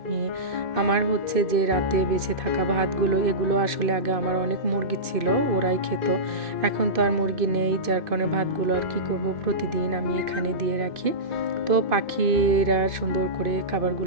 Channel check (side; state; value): left; late; 2.5 ms